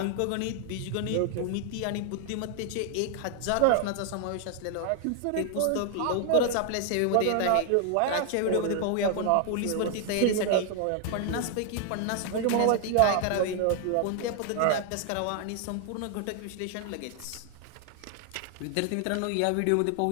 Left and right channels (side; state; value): both; different; correlation 0.00